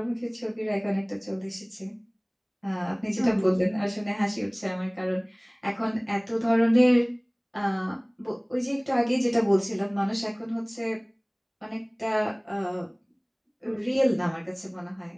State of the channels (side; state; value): both; identical; correlation 1.00